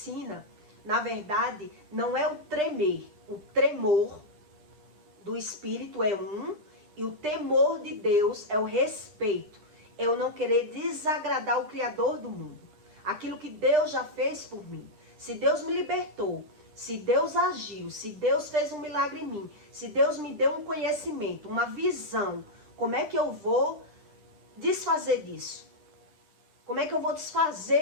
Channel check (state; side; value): late; left; 9.9 ms